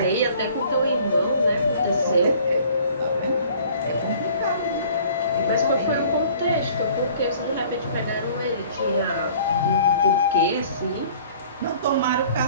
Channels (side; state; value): both; inverted; correlation -0.52